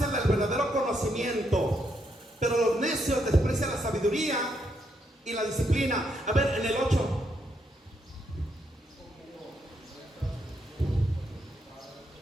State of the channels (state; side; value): normal; both; correlation 0.77